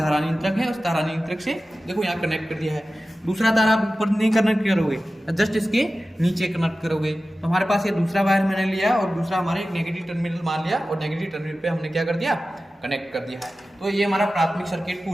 नियंत्रक है, उस धारा नियंत्रक से देखो यहाँ कनेक्ट कर दिया है। दूसरा तार आप ऊपर नहीं कनेक्ट करोगे, जस्ट इसके नीचे कनेक्ट करोगे। तो हमारे पास ये दूसरा वायर मैंने लिया और दूसरा हमारे एक नेगेटिव टर्मिनल मान लिया और नेगेटिव टर्मिनल पे हमने क्या कर दिया, कनेक्ट कर दिया है। तो ये हमारा प्राथमिक सर्किट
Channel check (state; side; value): normal; both; correlation 0.95